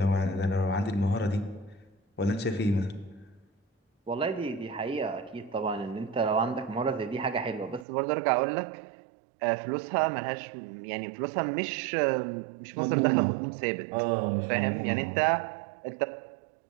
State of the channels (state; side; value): drops out; left; at 7.9 s